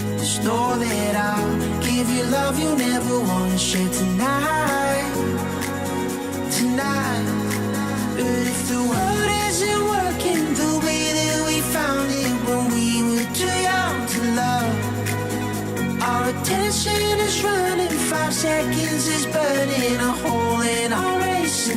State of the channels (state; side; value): identical; both; correlation 1.00